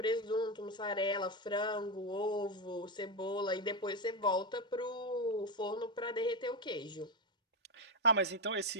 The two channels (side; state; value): both; normal; correlation 0.10